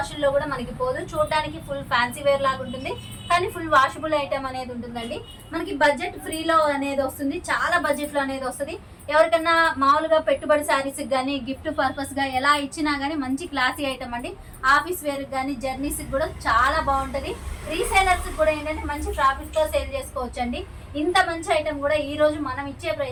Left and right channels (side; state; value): both; identical; correlation 1.00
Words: కూడా మనకి పోదు. చూడడానికి ఫుల్ ఫ్యాన్సీ వేర్ లాగా ఉంటుంది. కానీ ఫుల్ వాషబుల్ ఐటమ్ అనేది ఉంటుందండి. మనకి బడ్జెట్ ఫ్రీలో అనేది వస్తుంది, చాలా బడ్జెట్లో అనేది వస్తుంది. ఎవరికన్నా మామూలుగా పెట్టుబడి శారీస్కి కానీ గిఫ్ట్ పర్పస్గా ఎలా ఇచ్చినా కానీ మంచి క్లాసీ ఐటమ్ అండి. ఆఫీస్ వేర్కి కానీ జర్నీస్కి కూడా చాలా బాగుంటుంది. రీసేలర్స్కి కూడా ఏంటంటే మంచి ప్రాఫిట్తో సేల్ చేసుకోవచ్చండి. ఇంత మంచి ఐటమ్ కూడా ఈ రోజు మనం ఇచ్చే